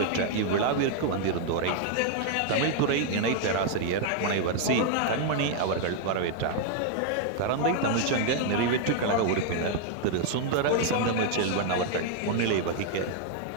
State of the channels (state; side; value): different; both; correlation 0.00